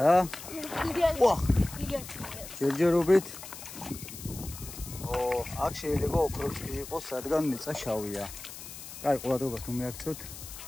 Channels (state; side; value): noise; left; hiss, 13 dB below the sound